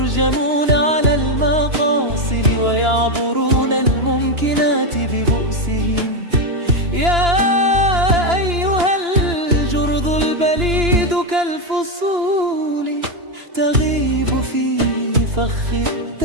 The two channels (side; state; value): left; late; 2.9 ms